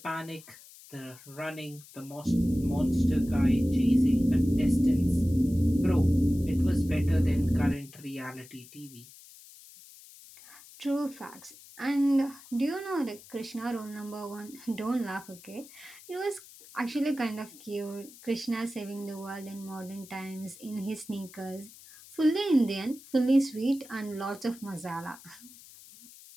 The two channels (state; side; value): noise; left; hiss, 20 dB below the sound